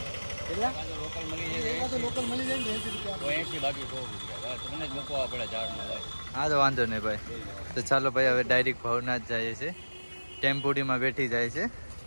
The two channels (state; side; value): inverted; both; correlation -1.00